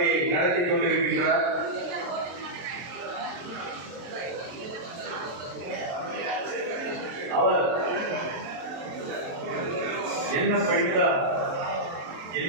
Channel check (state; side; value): late; left; 23 ms